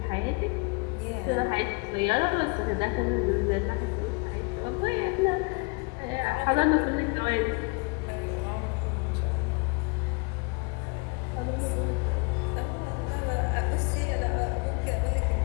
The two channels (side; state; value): right; quieter; 30.7 dB